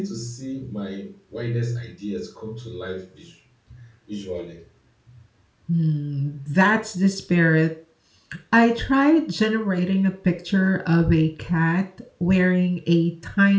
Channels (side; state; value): both; identical; correlation 1.00